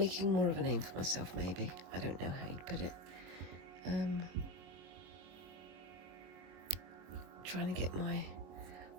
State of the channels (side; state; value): left; late; 22 ms